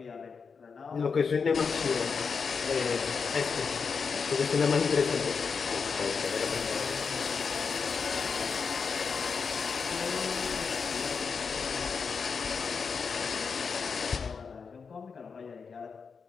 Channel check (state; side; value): quieter; right; 5.5 dB